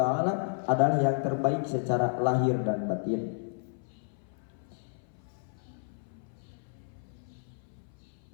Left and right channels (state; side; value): silent; right; 56 dB below the other